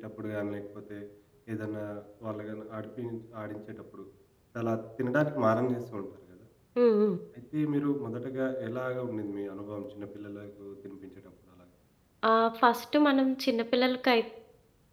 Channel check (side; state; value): both; identical; correlation 1.00